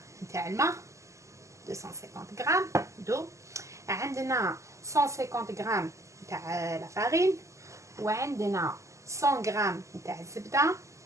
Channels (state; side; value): late; left; 0.15 ms